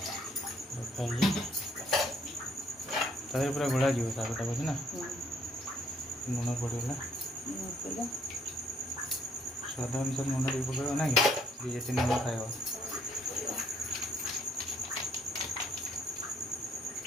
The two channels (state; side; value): normal; both; correlation 0.65